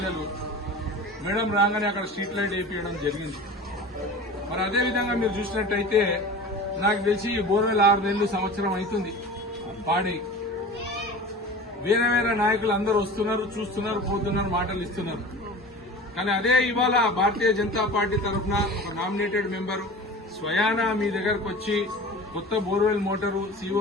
మేడం రాగానే అక్కడ స్ట్రీట్ లైట్ వేయించడం జరిగింది. మరి అదేవిధంగా మీరు చూసినట్టయితే నాకు తెలిసి బోర్వెల్ 6 నెలలు సంవత్సరం అవుతుంది పాడి. వేరే వేరే నాయకులు అందరూ వస్తున్నారు, చూస్తున్నారు, పోతున్నారు, మాటలు ఇస్తున్నారు. కానీ అదే ఇవాళ భారతీయ జనతా పార్టీ తరఫున ఒక నామినేటెడ్ మెంబరు స్వయానా మీ దగ్గరకు వచ్చి కొత్త బోర్వెల్ మోటారు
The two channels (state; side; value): normal; both; correlation 0.36